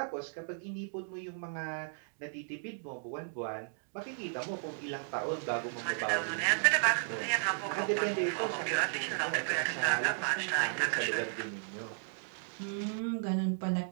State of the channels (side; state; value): left; silent; digital silence